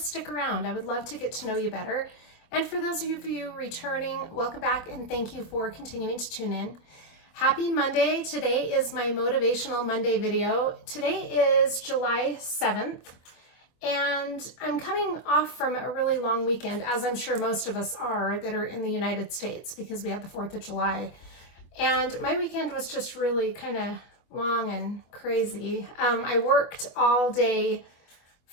around. I would love to get to know you better. And for those of you returning, welcome back and thank you for continuing to tune in. Happy Monday. Today is my Motivational Monday video. Today is July 7th, and I'm coming off from a really long weekend, as I'm sure most of us are that are in the United States, because we had the 4th of July. And my weekend was just really kind of long and crazy. I worked all day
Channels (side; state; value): right; late; 24 ms